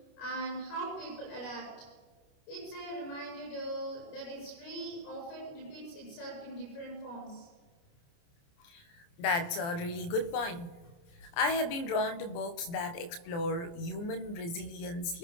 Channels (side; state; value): right; late; 29 ms